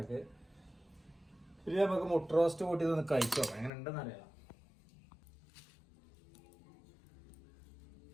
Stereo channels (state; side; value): drops out; right; at 3.7 s